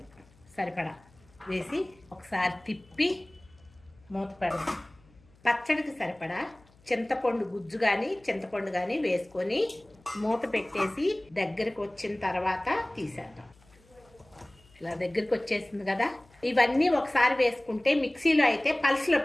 సరిపడా వేసి ఒకసారి తిప్పి మూత పెడదాం. పచ్చడికి సరిపడా చింతపండు గుజ్జు కానీ చింతపండు కానీ వేసుకొని మూత పెట్టేసి దగ్గరికి వచ్చిన తర్వాత తీసేద్దాం. ఇలా దగ్గరికి వచ్చేసింది కదా. ఇవన్నీ ఒకసారి వేసుకుంటే మిక్సీలో అయితే పల్స్లో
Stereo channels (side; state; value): left; noise; hum, 29 dB below the sound